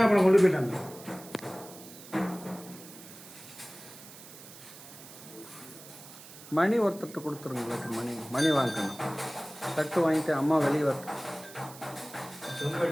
பழம் கொண்டு போயிட்டாங்க. மணி ஒருத்தட்டு கொடுத்துருங்க. மணி வாங்கணும். தட்டு வாங்கிட்டு அம்மா வெளியே வர.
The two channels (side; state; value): right; noise; hiss, 17 dB below the sound